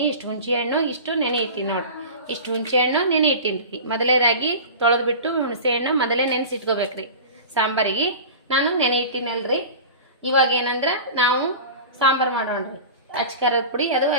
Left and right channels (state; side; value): inverted; both; correlation -0.34